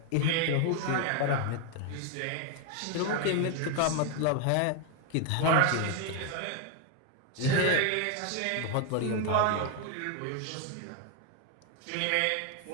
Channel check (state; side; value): different; both; correlation 0.01